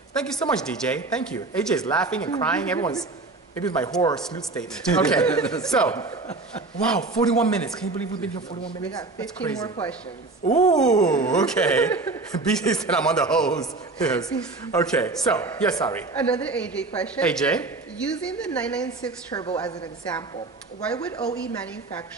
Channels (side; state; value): left; quieter; 3.5 dB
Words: Thank you so much, DJ. Thank you. AJ is laughing and crying. Everyone's, maybe it's my horror salute statement. Okay, so, wow, 41 minutes. Can you believe we've been here 41 minutes? We got 15 more questions. Ooh, okay. Bisi said I'm on the hose. Yes. Okay, so, yes, sorry. Another AJ question. AJ? Using the 996 turbo as an example, why would OE